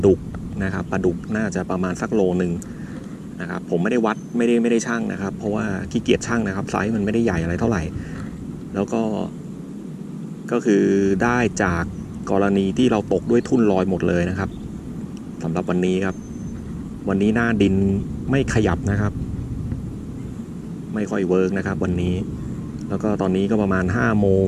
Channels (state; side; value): identical; both; correlation 1.00